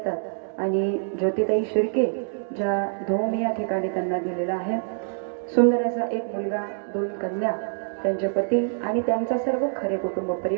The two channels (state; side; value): silent; left; digital silence